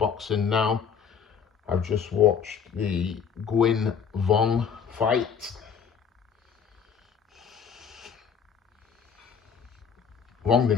now. I've just watched the Vong fight. Vong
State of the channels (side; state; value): right; quieter; 6.9 dB